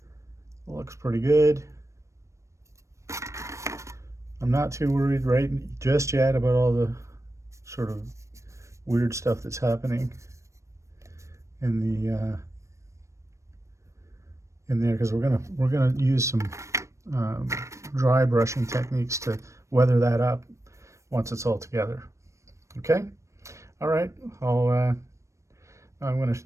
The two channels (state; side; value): late; left; 0.15 ms